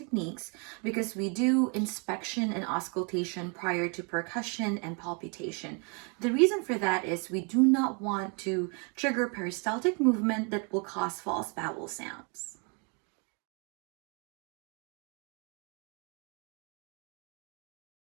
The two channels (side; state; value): left; quieter; 35.1 dB